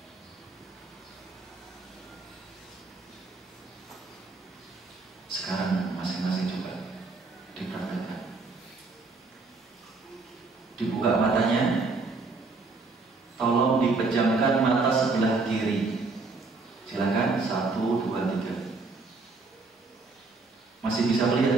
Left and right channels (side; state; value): left; quieter; 3.8 dB